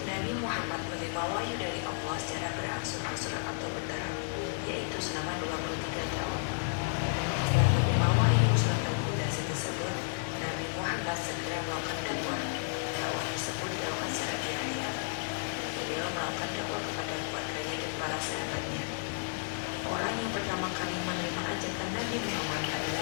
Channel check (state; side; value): silent; right; digital silence